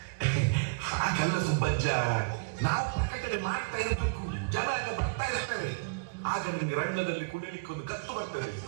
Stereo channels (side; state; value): left; quieter; 33.6 dB